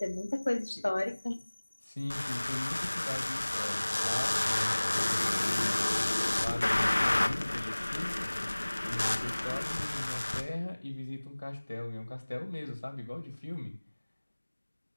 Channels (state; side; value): inverted; both; correlation -1.00